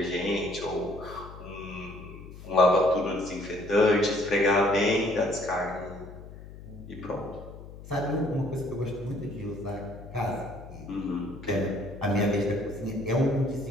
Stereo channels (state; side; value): noise; left; hum, 15 dB below the sound